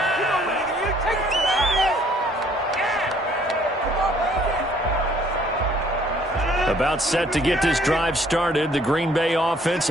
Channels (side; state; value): both; normal; correlation 0.61